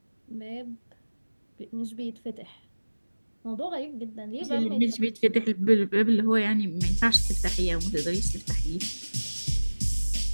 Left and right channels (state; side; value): inverted; both; correlation -1.00